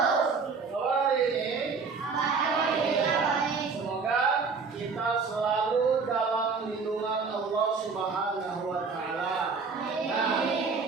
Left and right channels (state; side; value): quieter; left; 4.9 dB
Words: Hari ini semoga kita selalu dalam lindungan Allah Subhanahu wa taala. Nah,